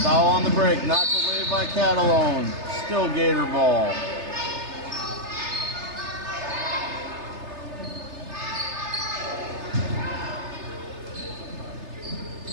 Dowell on the break. Knocked away by Catalone. Still Gator ball.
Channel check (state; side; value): late; left; 3.3 ms